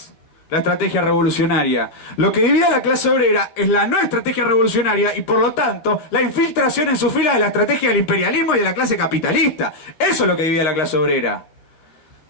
la estrategia revolucionaria. Lo que divide a la clase obrera es la no estrategia revolucionaria y por lo tanto la infiltración en su fila de la estrategia del imperialismo y de la clase capitalista. Eso es lo que divide a la clase obrera.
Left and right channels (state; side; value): late; right; 13 ms